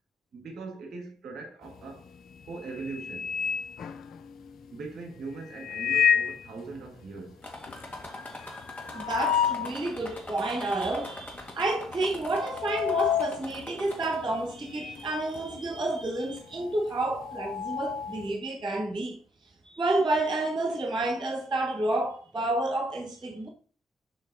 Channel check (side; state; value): both; normal; correlation 0.65